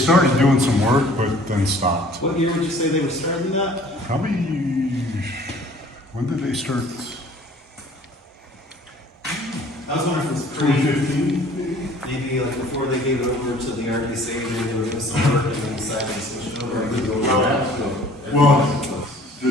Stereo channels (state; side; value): normal; both; correlation 0.52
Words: doing some work, but then stopped. What year would you say they were starting that? Probably. When did they start? I was wondering if it was 2015. maybe like before they gave it over to the RDC, maybe they were doing some work and then decided to switch it over. Well, the